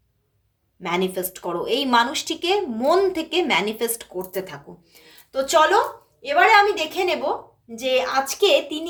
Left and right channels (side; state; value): both; identical; correlation 1.00